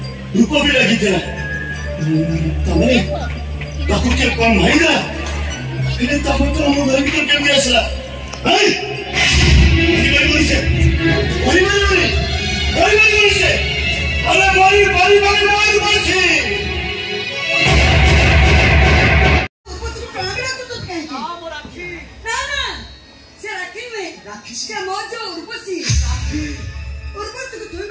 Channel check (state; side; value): identical; both; correlation 1.00